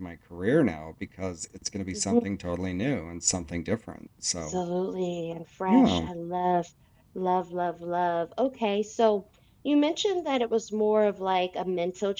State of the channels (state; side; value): identical; both; correlation 1.00